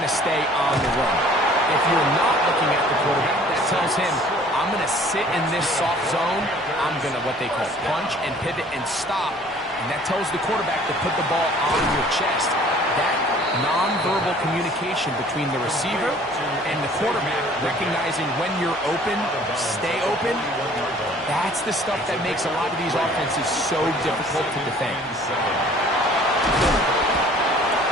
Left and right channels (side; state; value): both; normal; correlation 0.53